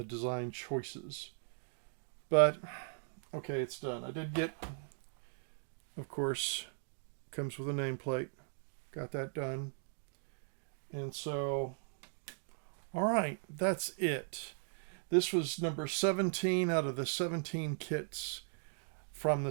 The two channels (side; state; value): left; silent; digital silence